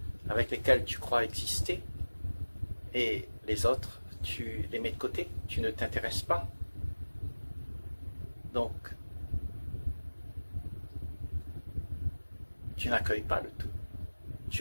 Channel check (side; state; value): both; inverted; correlation -1.00